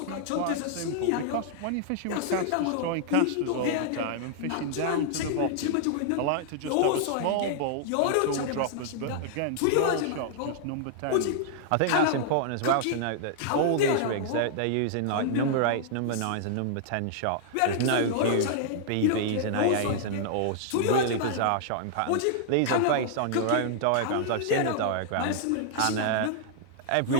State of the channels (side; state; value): both; different; correlation -0.01